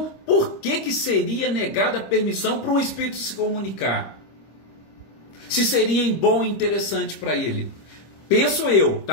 por que seria negada a permissão para um espírito se comunicar? Se seria bom e interessante para ele? Penso eu,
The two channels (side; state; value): right; late; 25 ms